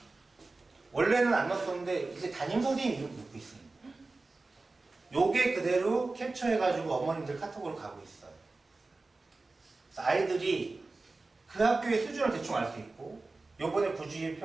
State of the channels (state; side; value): quieter; left; 3.5 dB